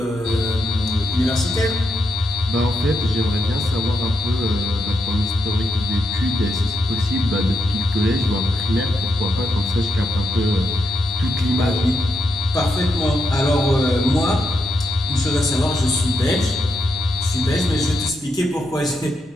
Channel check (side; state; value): both; normal; correlation 0.82